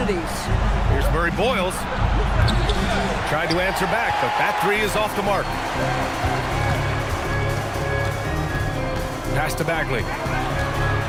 Here's Murray Boyles. Tried to answer back, but that three is off the mark. Pass to Bagley.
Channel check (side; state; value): both; identical; correlation 1.00